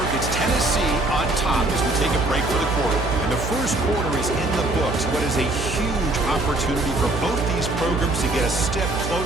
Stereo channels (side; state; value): right; noise; hum, 5 dB below the sound